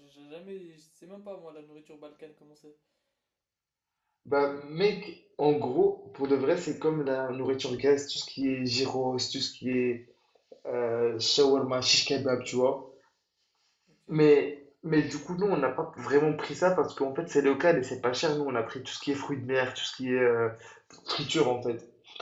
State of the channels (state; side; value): identical; both; correlation 1.00